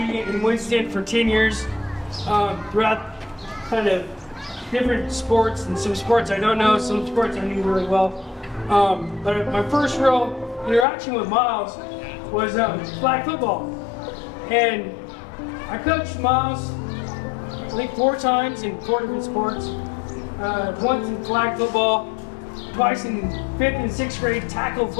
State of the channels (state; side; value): drops out; right; at 10.9 s